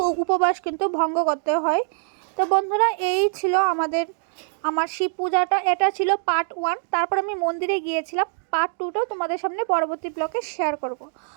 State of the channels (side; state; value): left; silent; digital silence